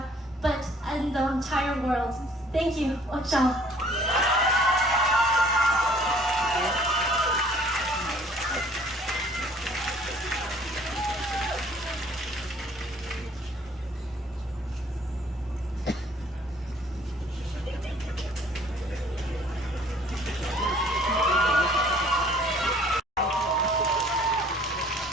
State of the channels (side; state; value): both; normal; correlation 0.57